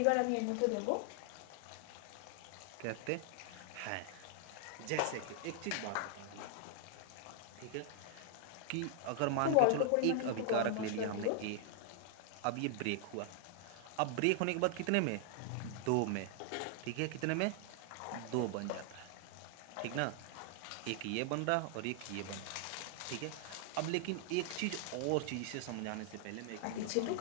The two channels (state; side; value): different; both; correlation 0.00